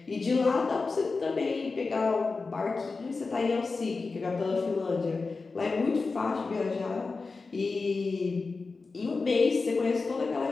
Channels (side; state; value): right; quieter; 4.1 dB